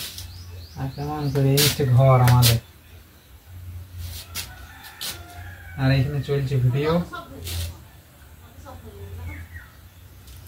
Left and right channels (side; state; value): both; identical; correlation 1.00